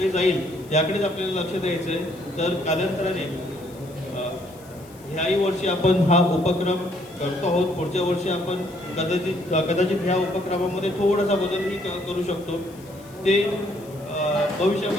जाईल याकडेच आपल्याला लक्ष द्यायचं आहे. तर कालांतराने ह्याही वर्षी आपण हा उपक्रम करतो आहोत. पुढच्या वर्षी आपण कदाचित ह्या उपक्रमामध्ये थोडासा बदलही करू शकतो. ते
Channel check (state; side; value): noise; left; hiss, 24 dB below the sound